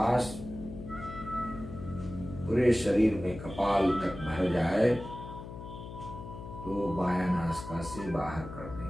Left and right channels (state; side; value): noise; left; hum, 11 dB below the sound